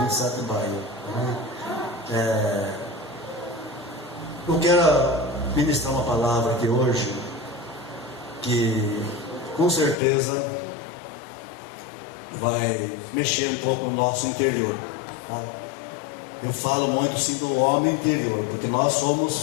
27 de maio. Eu quero ministrar uma palavra aqui hoje, que com certeza vai mexer um pouco no nosso interior, tá? Eu falo muito sim do homem interior, porque nós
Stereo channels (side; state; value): right; drops out; at 10.0 s